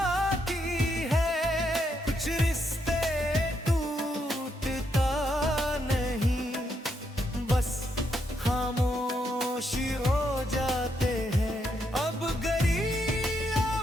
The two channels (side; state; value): both; normal; correlation 0.78